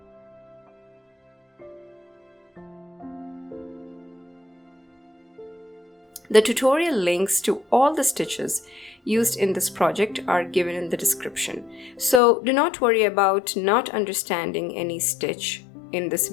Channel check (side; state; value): right; drops out; at 12.2 s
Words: The tutorial links to all the stitches used in this project are given in the description. So do not worry about not understanding any stitch in this